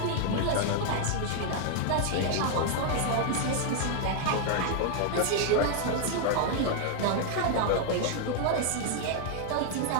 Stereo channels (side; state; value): both; different; correlation 0.00